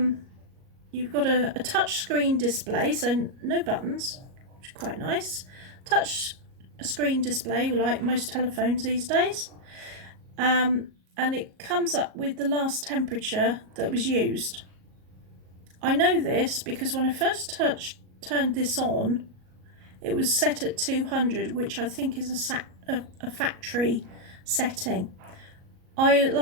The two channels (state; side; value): late; left; 38 ms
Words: you've got a touch screen display, so no buttons, which is quite nice. Touch screen display, like most telephones these days. And it comes up with the last temperature that was used. I know this because when I first turned this on, it was set at 200, which I think is a factory setting.